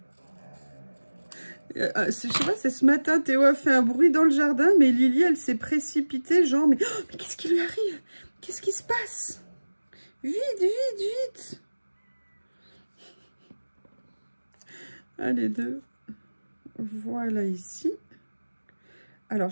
Je sais pas, c'est ce matin, Théo a fait un bruit dans le jardin, mais Lily, elle s'est précipitée, genre, mais qu'est-ce qui lui arrive? Qu'est-ce qui se passe? Vite, vite, vite! Allez, deux. Voilà ici. Alors,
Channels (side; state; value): both; inverted; correlation -1.00